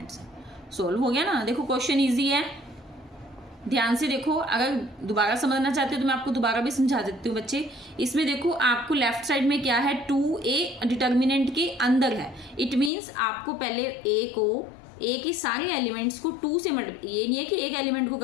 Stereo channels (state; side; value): drops out; right; at 12.9 s